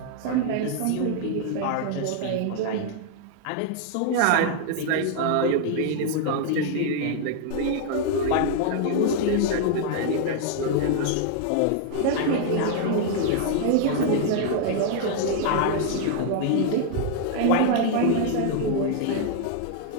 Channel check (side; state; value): both; different; correlation 0.00